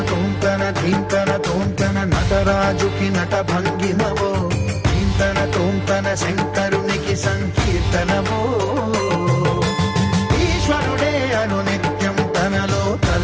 ధీంతన తోంతన నటరాజుకి నట భంగిమవో ధీంతన తోంతన శంకరునికి సంకీర్తనవో ఈశ్వరుడే అనునిత్యం తనలో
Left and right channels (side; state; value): both; identical; correlation 1.00